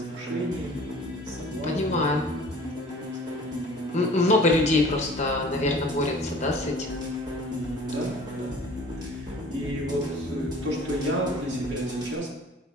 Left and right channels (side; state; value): both; normal; correlation 0.47